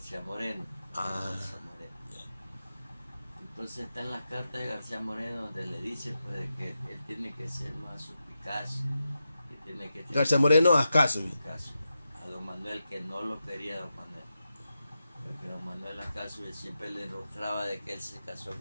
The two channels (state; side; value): inverted; both; correlation -0.89